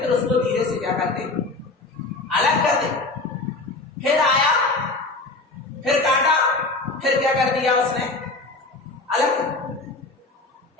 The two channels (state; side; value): quieter; right; 3.3 dB